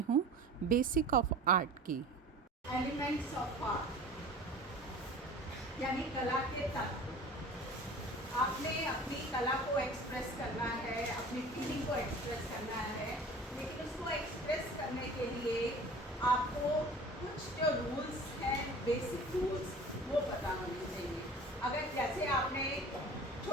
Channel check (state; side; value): normal; both; correlation 0.41